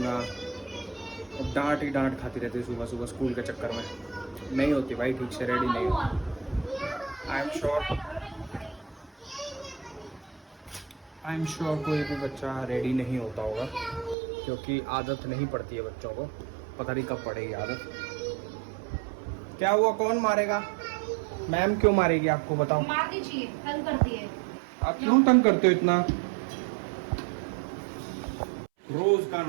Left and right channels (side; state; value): left; drops out; at 14.2 s